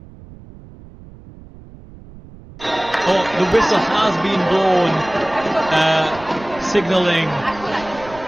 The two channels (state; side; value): noise; right; rumble, 19 dB below the sound